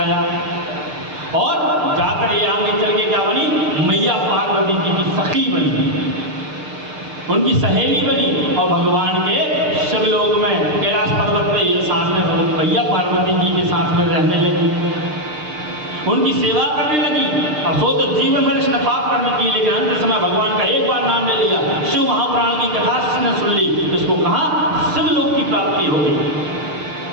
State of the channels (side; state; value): left; late; 6.6 ms